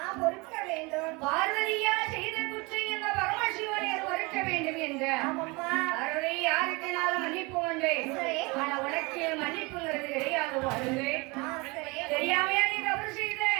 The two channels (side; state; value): left; quieter; 26.5 dB